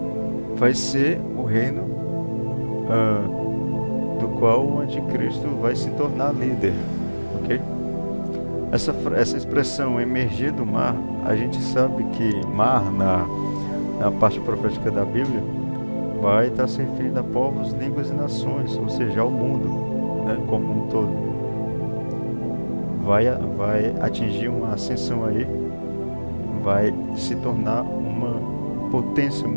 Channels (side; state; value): both; inverted; correlation -1.00